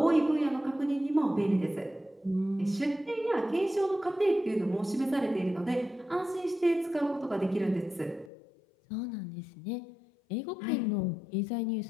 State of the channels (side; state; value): right; drops out; at 8.3 s